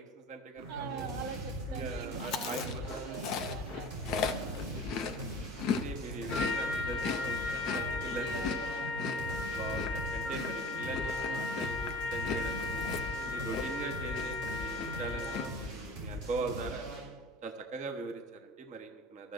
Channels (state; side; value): normal; both; correlation 0.40